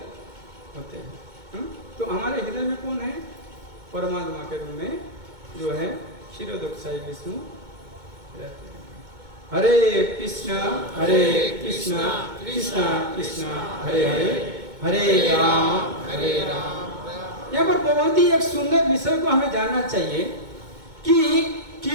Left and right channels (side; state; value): left; late; 2.2 ms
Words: होते हैं। तो हमारे हृदय में कौन है? परमात्मा के रूप में जो है क्षीरोदक्षाई विष्णु रहते हैं। हरे कृष्णा कृष्णा कृष्णा हरे हरे, हरे राम। यहाँ पर बहुत ही एक सुंदर विषय को हमें जानना चाहिए कि